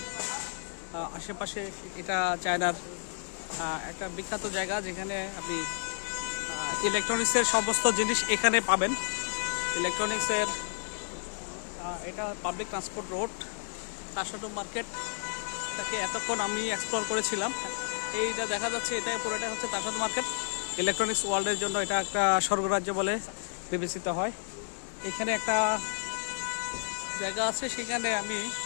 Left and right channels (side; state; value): right; silent; digital silence